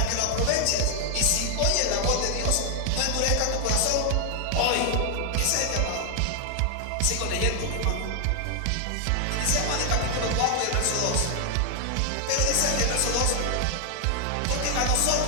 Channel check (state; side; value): different; both; correlation 0.00